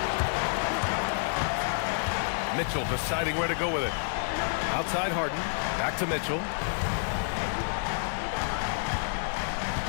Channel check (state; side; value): silent; right; digital silence